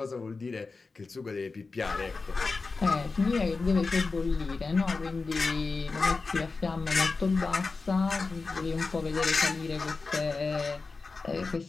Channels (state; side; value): quieter; right; 4.1 dB